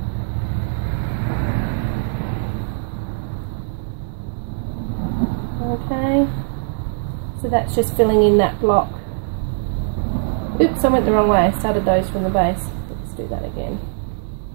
Okay, so that's just filling in that block. Oops, I went the wrong way. I started those from the base. Let's do that again.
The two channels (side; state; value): left; silent; digital silence